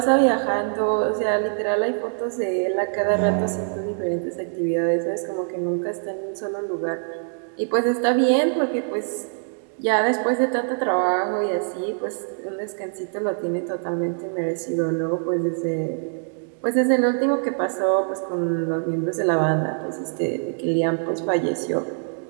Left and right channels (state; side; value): silent; left; 63 dB below the other